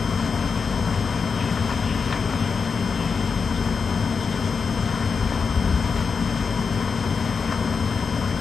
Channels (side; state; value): right; quieter; 5.4 dB